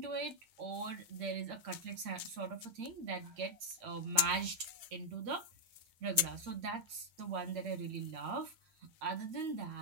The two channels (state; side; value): late; left; 8.7 ms